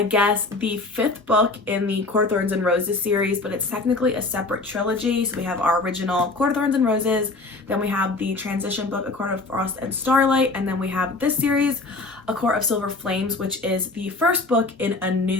guess, the 5th book in the Court of Thorns and Roses series, but it's technically a separate trilogy. So we have our original Court of Thorns and Roses, then we have the transition book, A Court of Frost and Starlight, and then we have this series, A Court of Silver Flames, which is the first book in a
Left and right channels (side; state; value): right; quieter; 3.4 dB